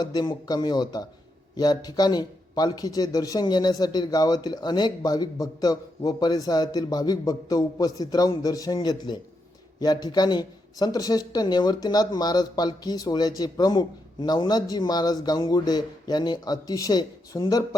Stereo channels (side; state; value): both; normal; correlation 0.82